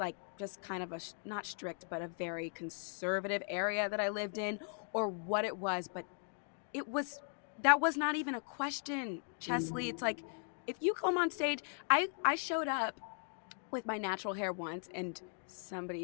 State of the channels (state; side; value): silent; right; 52 dB below the other